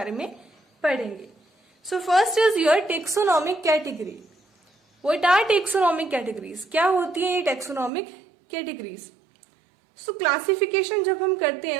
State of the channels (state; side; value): drops out; left; at 7.9 s